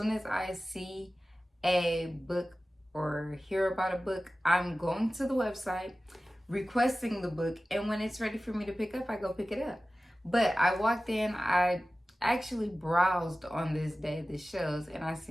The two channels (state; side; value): normal; both; correlation 0.96